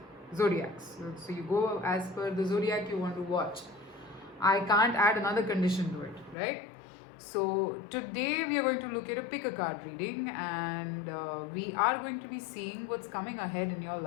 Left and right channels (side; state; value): right; drops out; at 6.4 s